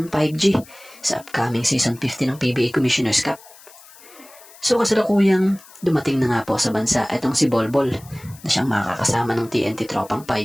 5G sa upcoming Season 50 ng PBA Commissioner's Cup. So kasalukuyang dumating na nga po sa bansa itong si Bolbol na siyang makakasama ng TNT Tropang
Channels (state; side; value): noise; left; hiss, 22 dB below the sound